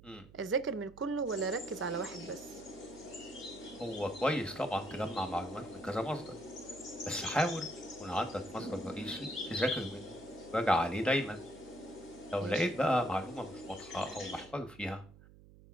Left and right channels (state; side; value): noise; right; hum, 21 dB below the sound